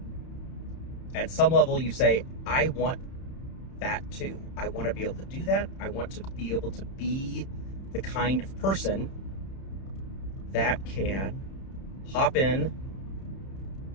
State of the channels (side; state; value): right; late; 31 ms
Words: at some level you say, I want that too. I want to be able to do that. I want to be able to be the kind of person that can hop in